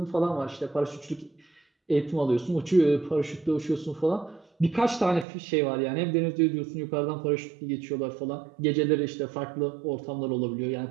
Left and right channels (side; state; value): left; drops out; at 5.2 s